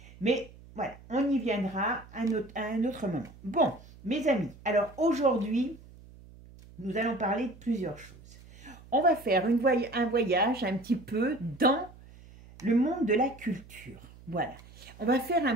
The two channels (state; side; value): noise; right; hum, 21 dB below the sound